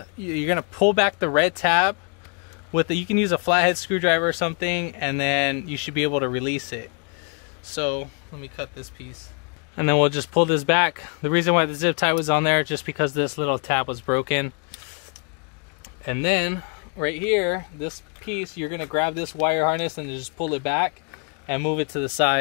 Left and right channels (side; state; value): right; quieter; 38.1 dB